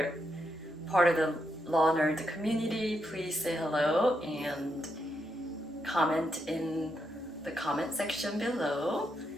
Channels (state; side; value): normal; both; correlation 0.81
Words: part of the Law Nerd community, please say hello and comment in the comment section below.